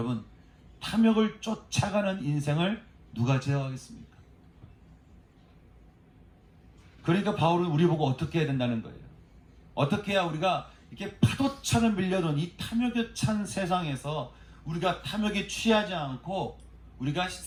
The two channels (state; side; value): identical; both; correlation 1.00